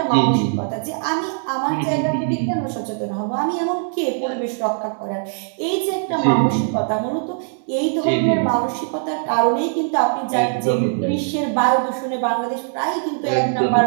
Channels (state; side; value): silent; left; digital silence